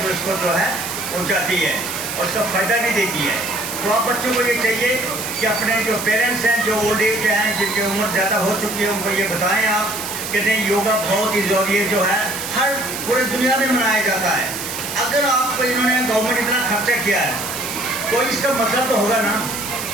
जो इसको जो है पहुँचाती है और उसका फ़ायदा भी देती है। तो आप बच्चों को ये चाहिए कि अपने जो पेरेंट्स हैं, जो ओल्ड एज हैं, जिनकी उम्र ज़्यादा हो चुकी है, उनको ये बताएँ आप कि नहीं योगा बहुत ही ज़रूरी है, जो है हर पूरे दुनिया में मनाया जाता है। अगर आपको इन्होंने गवर्नमेंट इतना खर्चा किया है तो इसका मतलब तो होगा ना।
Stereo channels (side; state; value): right; noise; hiss, 7 dB below the sound